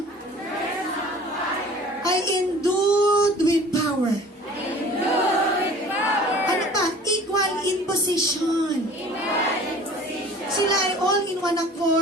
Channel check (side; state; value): both; normal; correlation 0.46